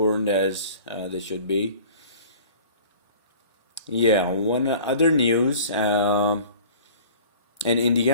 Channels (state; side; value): inverted; both; correlation -0.45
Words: as they should be. Yeah, one other news. In